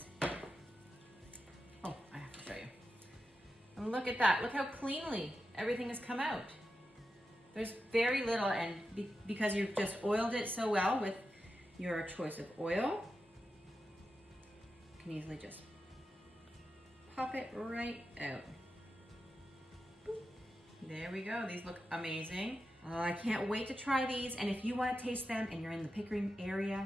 Oh, I have to show you. And look at that. Look how cleanly everything has come out. There's very little, and because you've just oiled it so well with your choice of oil, you can easily just pop it right out. Boop. There we go. These look amazing. I can't wait to try these, and if you want to taste them and you're in the Pickering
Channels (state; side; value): normal; both; correlation 0.90